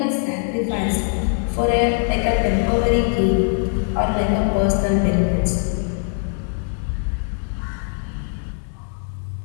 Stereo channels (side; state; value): right; silent; 56 dB below the other